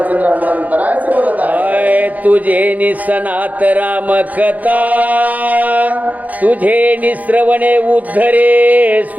हनुमंतरायचे बोलत आहे. तुझे निसनात राम कथा, तुझे निश्रवणे उद्धरे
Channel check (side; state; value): left; late; 0.077 ms